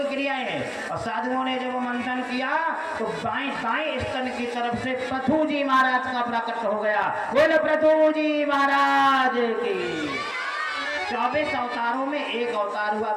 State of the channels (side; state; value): both; identical; correlation 1.00